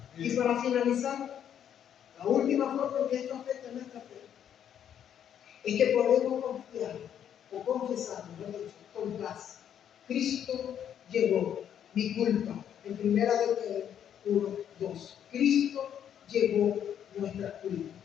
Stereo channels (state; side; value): quieter; right; 9.4 dB